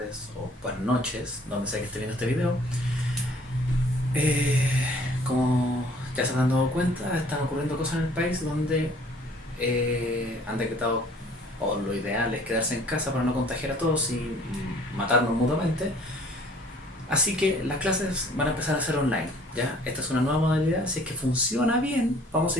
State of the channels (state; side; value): normal; both; correlation 0.55